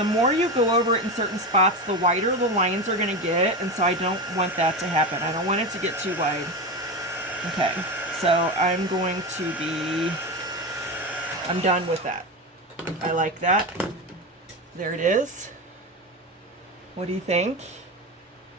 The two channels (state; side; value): normal; both; correlation 0.19